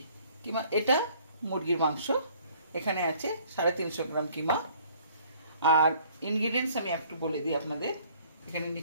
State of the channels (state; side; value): inverted; both; correlation -0.58